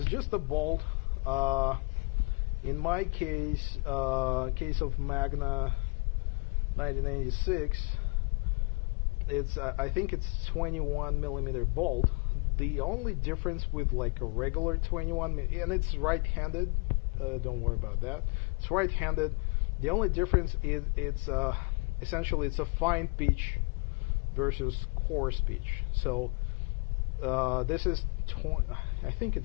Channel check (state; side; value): quieter; right; 31.2 dB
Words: just a bolt. In my case, case of Magna 1986, it's I think it's 21 millimeter bolt. The only difference with like a regular 21, and it's right-handed, don't worry about that, it's right-handed. The only difference is it's essentially it's a fine pitch versus coarse pitch. So this is I think